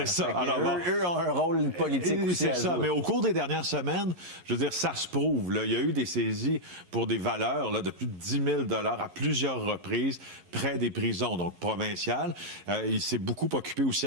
ça. Alors, eux ont un rôle politique aussi. C'est ça. Mais au cours des dernières semaines, je veux dire, ça se prouve. Là. Il y a eu des saisies pour des valeurs là, de plus de 10 000 à plusieurs reprises près des prisons, donc provinciales. Il s'est beaucoup occupé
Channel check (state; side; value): late; left; 11 ms